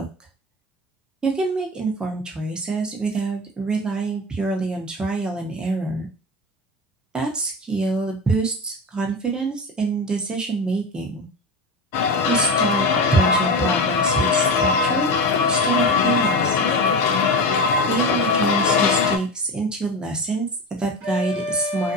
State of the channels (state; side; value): normal; both; correlation 0.24